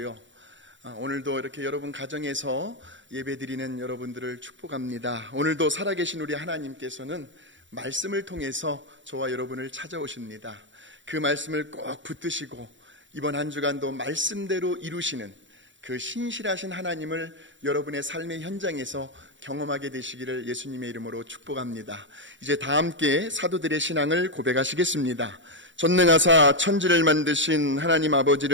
오늘도 이렇게 여러분 가정에서 예배드리는 여러분들을 축복합니다. 오늘도 살아계신 우리 하나님께서는 말씀을 통해서 저와 여러분을 찾아오십니다. 그 말씀을 꼭 붙드시고 이번 한 주간도 말씀대로 이루시는 그 신실하신 하나님을 여러분의 삶의 현장에서 경험하게 되시기를 예수님의 이름으로 축복합니다. 이제 다 함께 사도들의 신앙을 고백하시겠습니다. 전능하사 천지를 만드신 하나님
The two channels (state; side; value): late; left; 0.55 ms